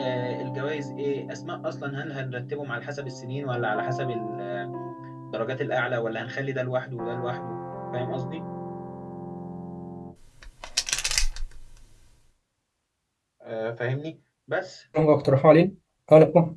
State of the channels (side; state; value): both; identical; correlation 1.00